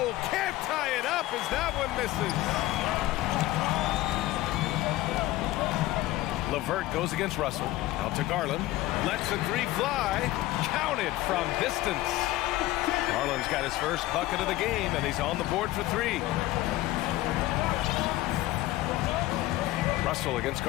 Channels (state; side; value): quieter; right; 16.8 dB